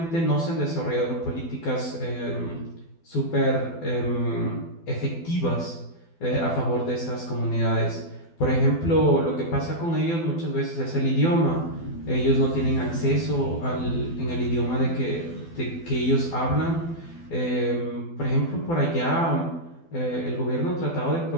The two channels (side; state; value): right; late; 12 ms